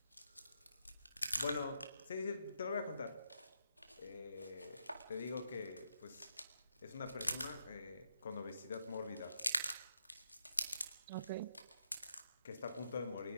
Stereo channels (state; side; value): inverted; both; correlation -0.81